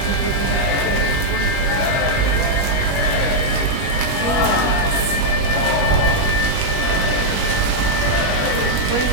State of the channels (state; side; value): late; right; 21 ms